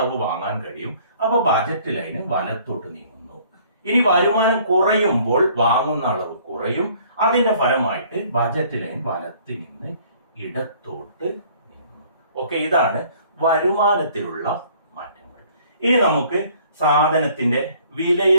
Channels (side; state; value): both; inverted; correlation -0.57